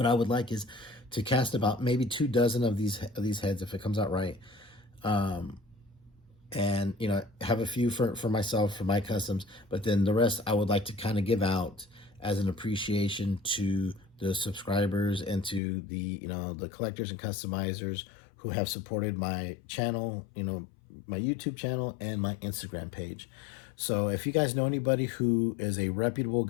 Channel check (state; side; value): drops out; right; at 15.6 s